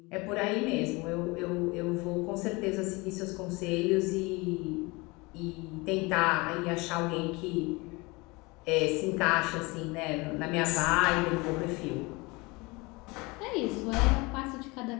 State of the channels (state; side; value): quieter; right; 25.1 dB